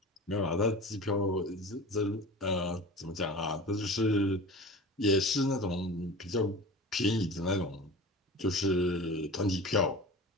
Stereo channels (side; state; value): both; normal; correlation 0.35